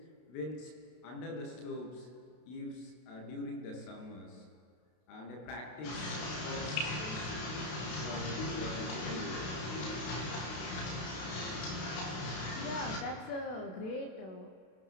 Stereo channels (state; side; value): late; right; 32 ms